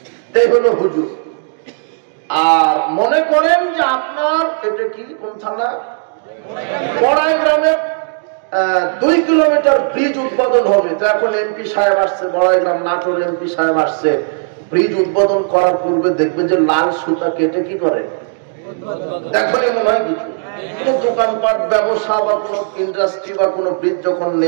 তাই হলো হুজুর। আর মনে করেন যে আপনার এটা কি কোন থানা, বড়াই গ্রামে 2 কিলোমিটার ব্রিজ উদ্বোধন হবে। তো এখন এমপি সাহেব আসছে, বড়াই গ্রাম নাটোর এমপি সাহেব আসছে। ব্রিজ উদ্বোধন করার পূর্বে দেখবে যে লাল সুতা কেটে কি করে, দেখো মনে হয় কিছু কোন দোকানপাট, ব্যবসা বা কোন ইন্ডাস্ট্রি বা কোন ব্রিজ যখন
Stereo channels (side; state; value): left; silent; digital silence